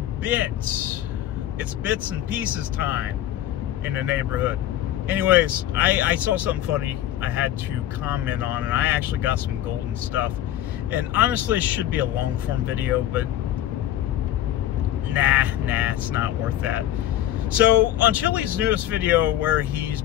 It's bits and pieces time in the neighborhood. Anyways, I saw something funny I had to comment on, and I actually got some golden stuff. And honestly, it should be a long form video, but nah, it's not worth that. So on Chili's newest video where he's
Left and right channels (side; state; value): right; quieter; 12.6 dB